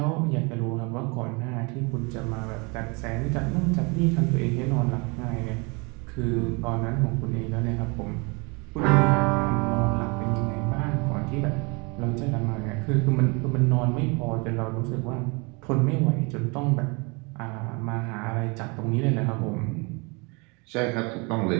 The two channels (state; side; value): quieter; left; 29.7 dB